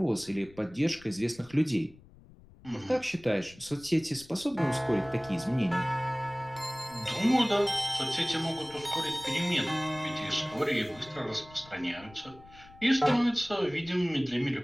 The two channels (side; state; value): left; noise; rumble, 23 dB below the sound